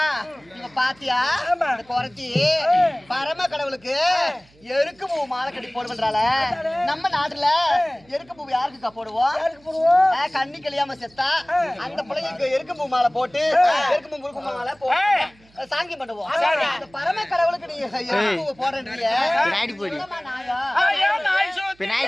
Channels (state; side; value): noise; right; hum, 30 dB below the sound